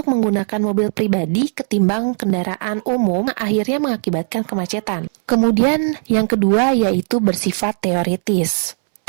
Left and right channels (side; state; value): left; silent; 67 dB below the other